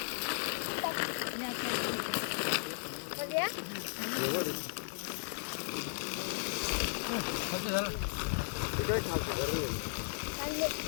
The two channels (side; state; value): right; silent; digital silence